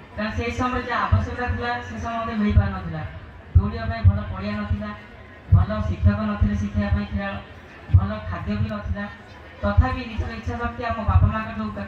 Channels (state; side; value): identical; both; correlation 1.00